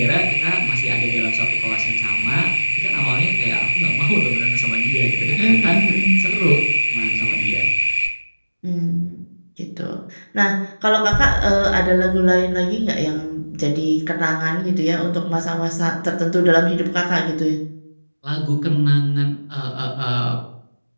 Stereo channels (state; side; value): inverted; both; correlation -1.00